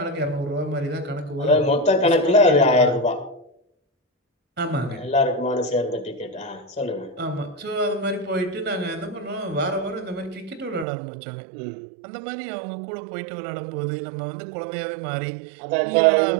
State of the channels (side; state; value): left; drops out; at 10.9 s